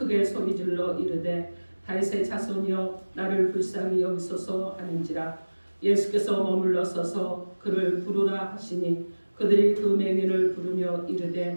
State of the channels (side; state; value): both; inverted; correlation -1.00